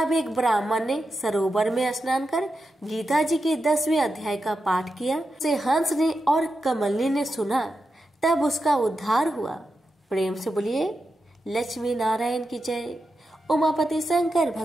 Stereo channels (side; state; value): both; normal; correlation 0.89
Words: एक ब्राह्मण ने सरोवर में स्नान कर गीता जी के 10वें अध्याय का पाठ किया। उसे हंस ने और कमलनी ने सुना। तब उसका उद्धार हुआ। प्रेम से बोलिए लक्ष्मी नारायण की जय, उमापति शंकर